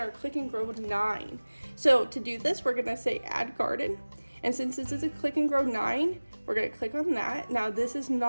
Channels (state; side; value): inverted; both; correlation -1.00